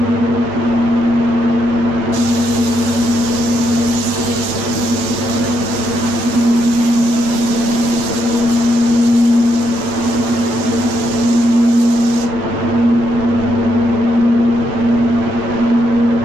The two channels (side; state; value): left; late; 9.2 ms